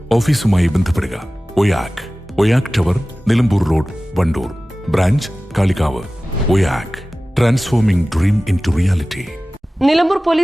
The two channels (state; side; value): normal; both; correlation 0.97